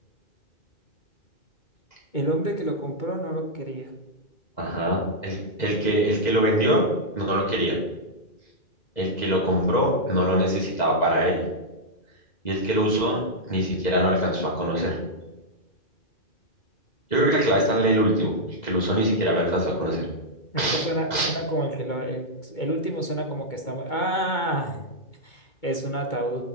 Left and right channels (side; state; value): right; late; 2.0 ms